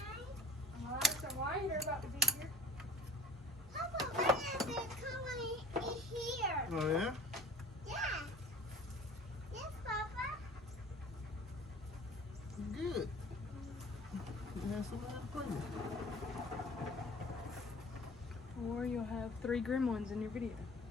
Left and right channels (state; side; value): normal; both; correlation 0.45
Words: Alright, so why you're about to be here? Papa, when is it coming in here? Oh, yeah? Yes. Yes, Papa. Good. You have somebody to play with. Or you'll have 3 gremlins in your video.